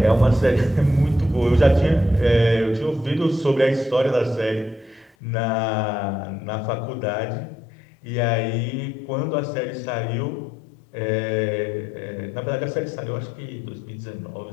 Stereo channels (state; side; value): drops out; right; at 5.1 s